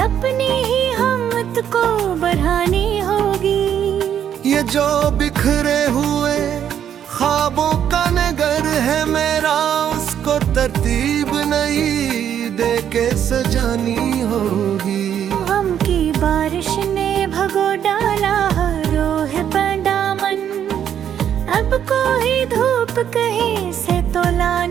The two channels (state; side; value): quieter; left; 9.4 dB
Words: अपनी ही हिम्मत को बढ़ानी होगी। ये जो बिखरे हुए ख्वाबों का नगर है मेरा, उसको तरतीब नहीं दे के सजानी होगी। गम की बारिश ने भगो डाला रोह पर दामन, अब कोई धूप कहीं से तो